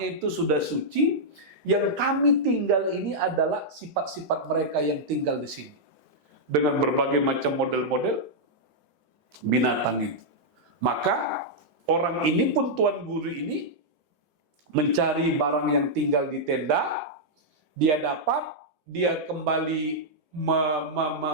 itu sudah suci. Yang kami tinggal ini adalah sifat-sifat mereka yang tinggal di sini dengan berbagai macam model-model binatang itu." Maka orang ini pun, tuan guru ini, mencari barang yang tinggal di tenda. Dia dapat, dia kembali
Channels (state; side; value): late; left; 8.7 ms